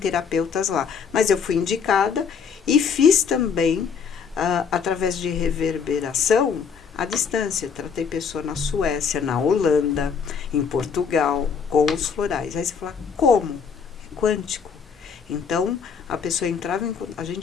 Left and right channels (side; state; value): right; quieter; 6.4 dB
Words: lá. Mas eu fui indicada e fiz também, através de reverberação, à distância. Tratei pessoa na Suécia, na Holanda, em Portugal, com os florais. Aí você fala: como? Quântico. Então, a pessoa entrava a